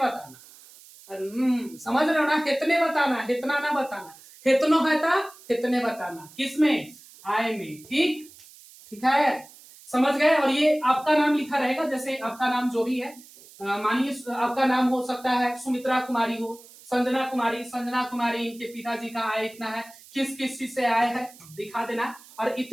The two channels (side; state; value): right; noise; hiss, 22 dB below the sound